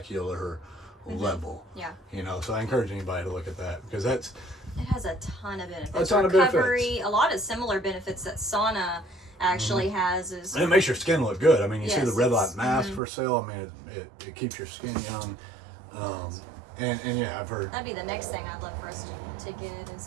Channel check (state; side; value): drops out; left; at 13.0 s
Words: level. Yeah. You know, so I encourage anybody to look at that because it has a ton of benefits. A ton of benefits. A lot of similar benefits that sauna actually has is, and it makes your skin look good. I mean, you see the red light mask for sale. I mean, it keeps your skin young. And yeah, I've heard that'd be the next thing I'd love for us to get